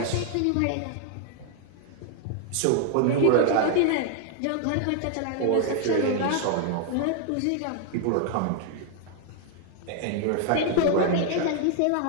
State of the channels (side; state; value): both; different; correlation 0.00